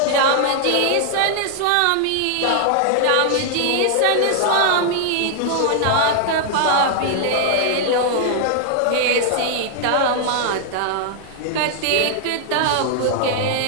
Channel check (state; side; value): different; both; correlation 0.00